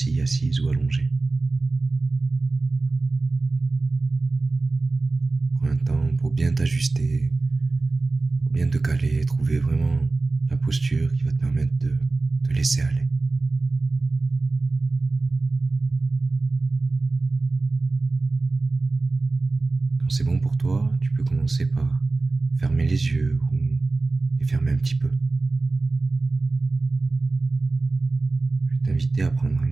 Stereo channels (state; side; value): quieter; left; 3.5 dB